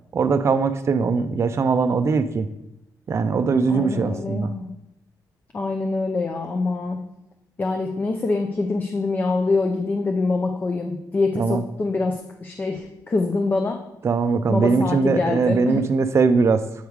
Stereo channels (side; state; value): both; normal; correlation 0.81